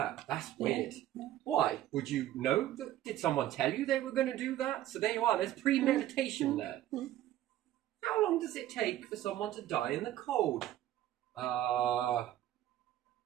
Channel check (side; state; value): left; quieter; 13.2 dB